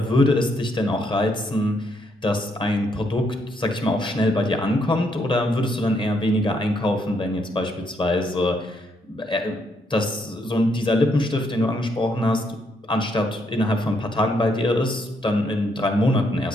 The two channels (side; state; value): both; normal; correlation 0.74